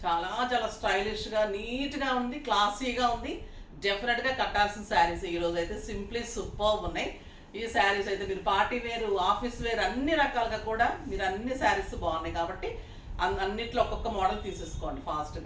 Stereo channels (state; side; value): identical; both; correlation 1.00